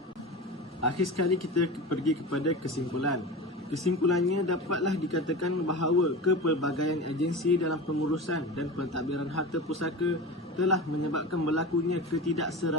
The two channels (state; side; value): normal; both; correlation 0.28